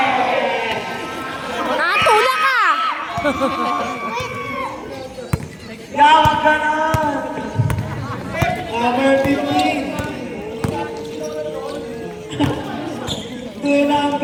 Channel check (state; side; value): identical; both; correlation 1.00